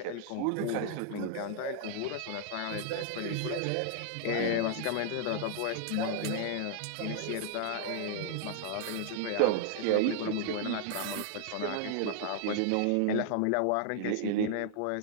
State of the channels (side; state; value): both; different; correlation -0.01